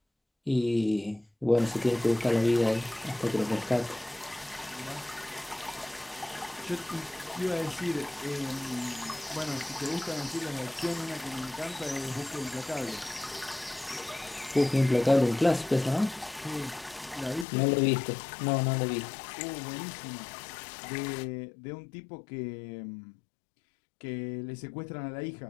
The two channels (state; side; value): drops out; right; at 17.4 s